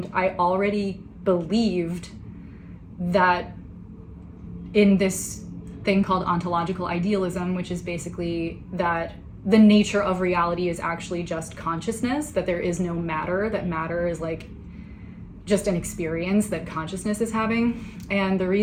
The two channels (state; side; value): identical; both; correlation 1.00